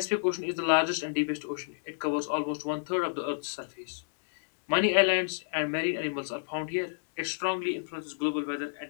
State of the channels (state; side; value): silent; right; digital silence